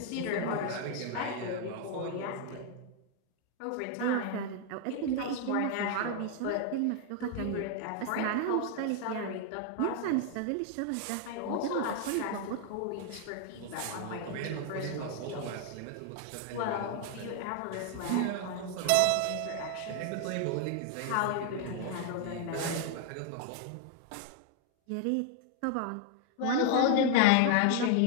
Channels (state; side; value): different; both; correlation 0.00